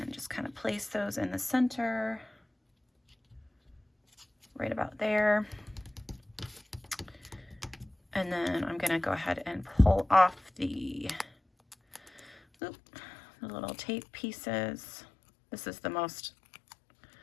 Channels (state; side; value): drops out; right; at 12.4 s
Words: just kind of place those in the center, right about there. And then I'm going to go ahead and pull off the little tape pieces. This is the most